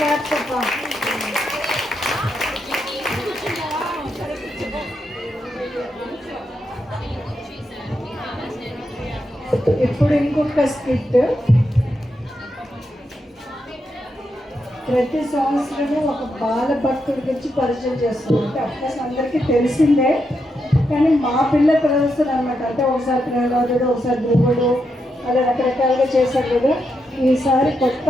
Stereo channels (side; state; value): both; normal; correlation 0.83